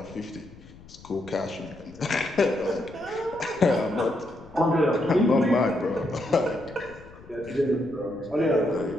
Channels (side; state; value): left; noise; rumble, 21 dB below the sound